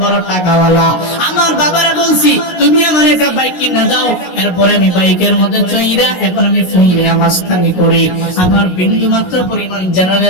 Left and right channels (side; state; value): right; late; 16 ms